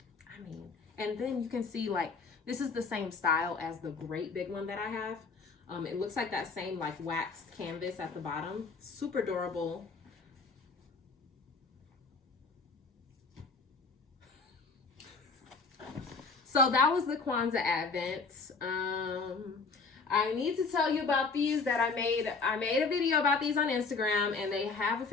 I mean, and then you can see like, this is the same style as the great big one that I have. It looks like that same like waxed canvas at the bottom. Super adorable. So that was the Kwanzaa Advents. I need to tell you about these that I made a video about these on Instagram, and they have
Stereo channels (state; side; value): quieter; right; 4.5 dB